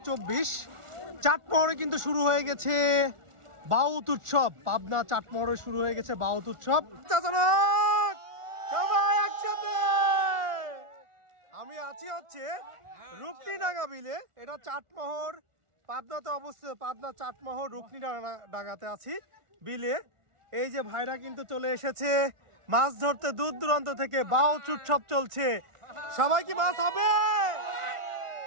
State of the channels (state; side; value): late; left; 1.4 ms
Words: চাটমোহরে কিন্তু শুরু হয়ে গেছে বাউত উৎসব। পাবনা চাটমোহরে শুরু হয়ে গেছে বাউত উৎসব। সবাই একসাথে। আমি আছি হচ্ছে রুকনিডাঙ্গা বিলে। এটা চাটমোহর পাবনাতে অবস্থিত। পাবনা চাটমোহর রুকনিডাঙ্গাতে আছি বিলে। এই যে ভাইরা কিন্তু চলে এসেছে মাছ ধরতে দূর দূরান্ত থেকে। বাউত উৎসব চলছে। সবাই কি মাছ হবে?